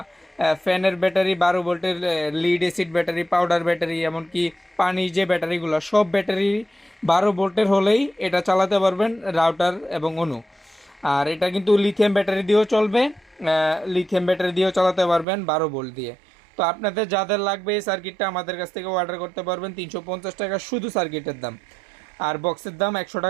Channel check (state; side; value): drops out; left; at 15.2 s